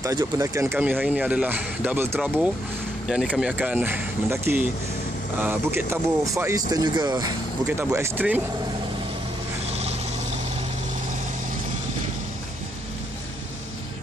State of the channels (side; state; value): both; normal; correlation 0.76